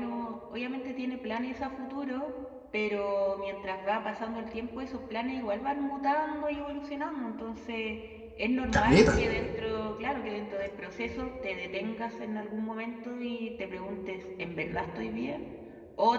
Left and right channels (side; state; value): both; identical; correlation 1.00